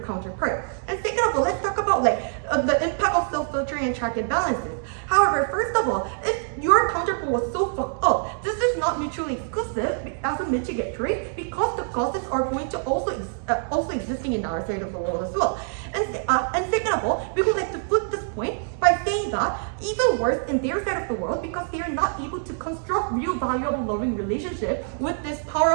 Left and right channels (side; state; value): left; silent; 62 dB below the other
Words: And second of all, let's talk about the impact of self-filtering and check and balances. However, first of all, if your counterpart was so fucked up, this is not mutually exclusive as a mitigatory, because the causes are going to also existing in our side of the world as well. And second of all, we would like to flip this point by saying that even worse in their side of the world, because they are not able to construct real valuable loving relationship with this power